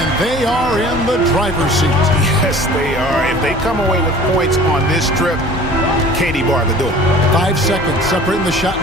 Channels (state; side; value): normal; both; correlation 0.45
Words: they are in the driver's seat. Yes, they are. If they come away with points on this trip, Katie bar the door. 5 seconds separating the shot